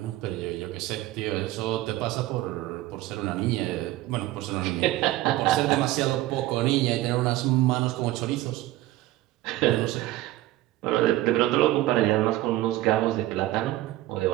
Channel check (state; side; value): quieter; left; 16.2 dB